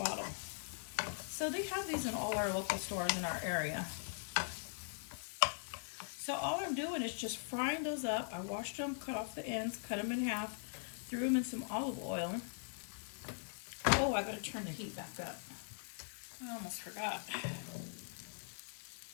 So they have these in all our local stores in our area. So all I'm doing is just frying those up. I washed them, cut off the ends, cut them in half, threw them in some olive oil. Oh, I gotta turn the heat back up. I almost forgot.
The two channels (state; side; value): silent; right; digital silence